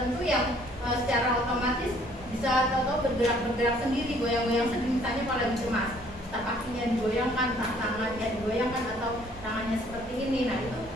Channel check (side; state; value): both; normal; correlation 0.60